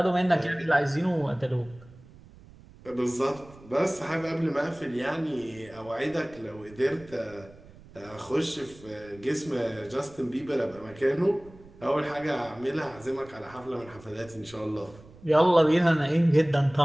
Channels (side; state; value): right; noise; rumble, 22 dB below the sound